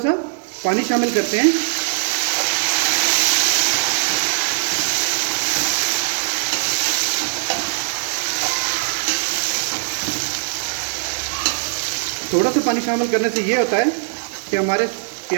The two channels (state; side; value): silent; left; 66 dB below the other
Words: पानी शामिल करते हैं। थोड़ा सा पानी शामिल करने से ये होता है कि हमारे